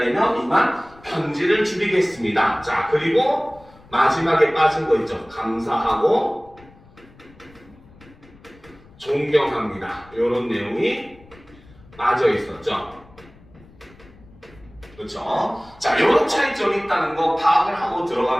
이만 편지를 줄이겠습니다. 자, 그리고 마지막에 빠진 거 있죠. 감사하고 존경합니다. 이런 내용이 빠져 있었죠. 그렇죠? 자, 이런 차이점이 있다는 거 파악을 하고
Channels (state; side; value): noise; left; rumble, 25 dB below the sound